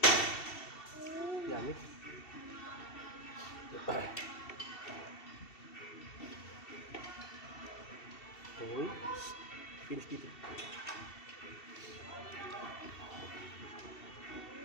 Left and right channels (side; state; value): right; late; 2.7 ms